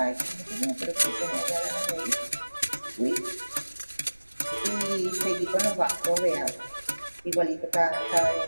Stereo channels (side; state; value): both; inverted; correlation -1.00